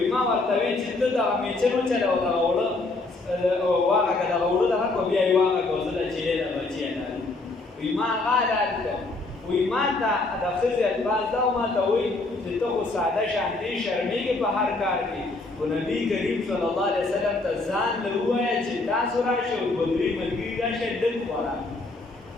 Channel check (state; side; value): quieter; right; 3.3 dB